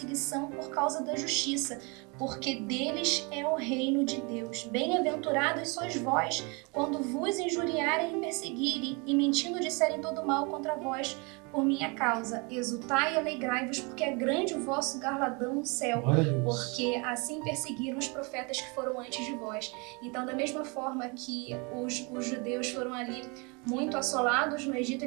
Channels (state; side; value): quieter; left; 30.5 dB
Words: por causa da justiça, porque deles é o reino de Deus. Bem-aventurados sois vós, quando vos injuriarem e perseguirem, e mentindo disserem todo mal contra vós por minha causa. Exultai e alegrai-vos, porque é grande o vosso galardão no céu, porque assim perseguiram os profetas que foram antes de vós. Então, da mesma forma que os judeus foram ali muito assolados no Egito,